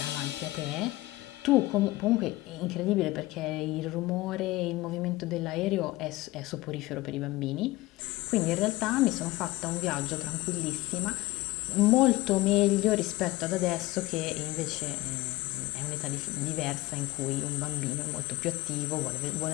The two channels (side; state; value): right; quieter; 18.7 dB